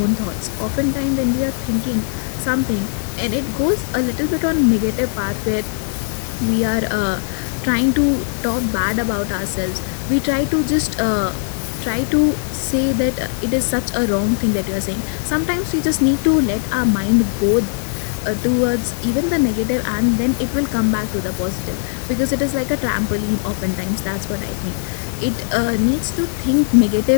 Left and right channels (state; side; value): silent; right; 66 dB below the other